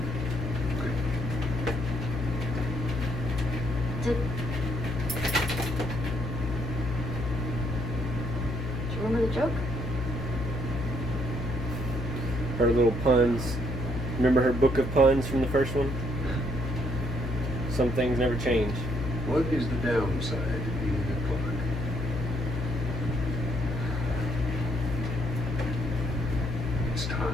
Did you remember the joke? her little puns. Remember her book of puns from the first one? Some things never change. What is the downside of being a clock? It's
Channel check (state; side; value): noise; left; hum, 3 dB below the sound